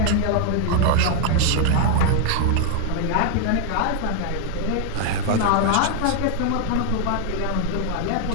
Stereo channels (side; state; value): both; different; correlation 0.00